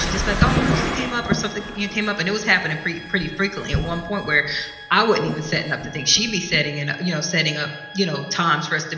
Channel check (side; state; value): both; identical; correlation 1.00